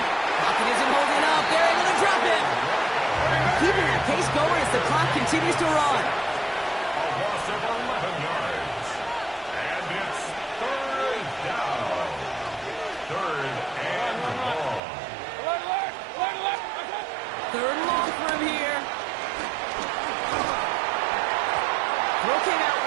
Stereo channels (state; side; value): drops out; left; at 14.8 s